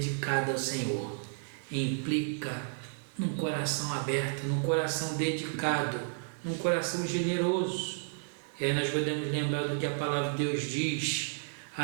ao Senhor implica num coração aberto, num coração dedicado, num coração generoso. E aí nós podemos lembrar do que a palavra de Deus diz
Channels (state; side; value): silent; left; digital silence